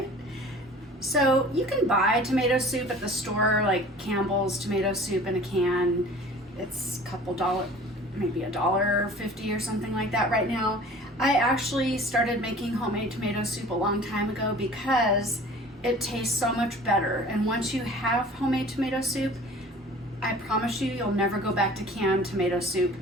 So you can buy tomato soup at the store, like Campbell's tomato soup in a can. It's a couple dollars, maybe $1.50 or something like that right now. I actually started making homemade tomato soup a long time ago because it tastes so much better, and once you have homemade tomato soup, I promise you, you'll never go back to canned tomato soup.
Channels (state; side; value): normal; both; correlation 0.45